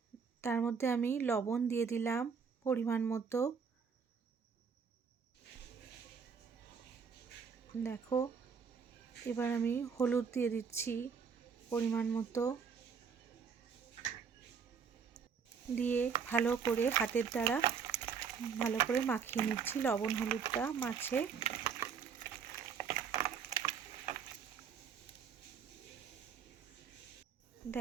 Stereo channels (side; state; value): left; quieter; 6.3 dB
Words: তার মধ্যে আমি লবণ দিয়ে দিলাম পরিমাণ মতো। দেখো, এবার আমি হলুদ দিয়ে দিচ্ছি পরিমাণ মতো, দিয়ে ভালো করে হাতের দ্বারা ভালো করে মাখিয়ে নিচ্ছি লবণ হলুদটা মাছে।